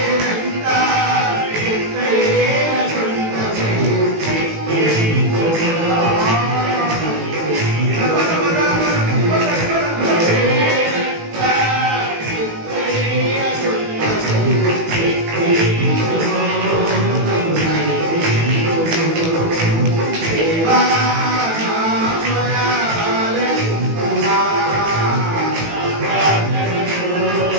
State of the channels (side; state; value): left; late; 18 ms